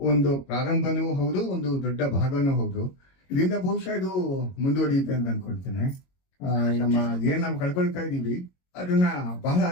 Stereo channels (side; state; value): right; late; 22 ms